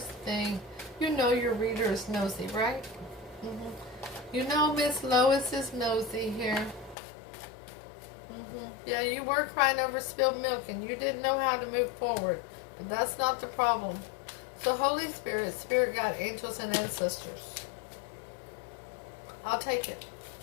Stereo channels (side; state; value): right; drops out; at 7.0 s